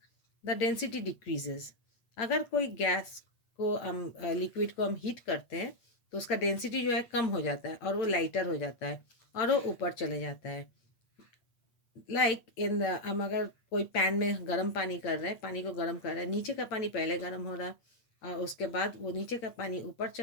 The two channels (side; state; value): right; late; 8.9 ms